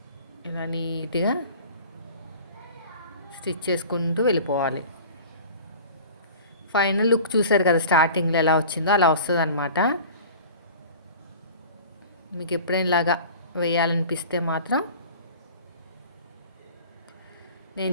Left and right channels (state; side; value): inverted; both; correlation -0.41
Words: ఇలా నీట్గా స్టిచ్ చేసుకుంటూ వెళ్ళిపోవాలి. ఫైనల్ లుక్ చూసారు కదా, స్టార్టింగ్లో ఎలా వచ్చిందో అలా వస్తుంది అనమాట. మీకు ఎప్పుడైనా ఇలాగా వేయాలనిపిస్తే మాత్రం నేను